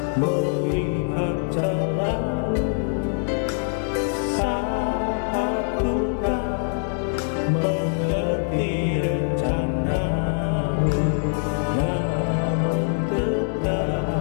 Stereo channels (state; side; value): silent; right; 63 dB below the other